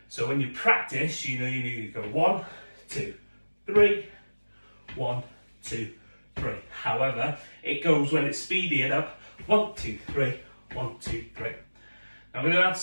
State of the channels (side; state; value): both; inverted; correlation -1.00